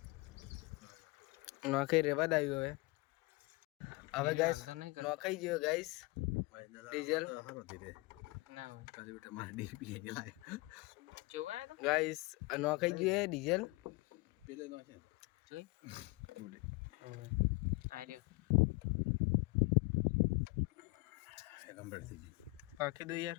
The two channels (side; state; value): right; quieter; 24.3 dB